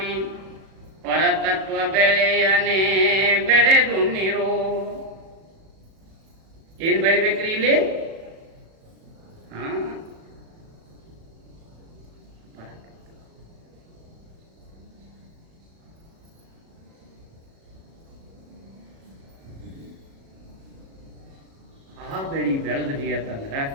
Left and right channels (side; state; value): left; late; 37 ms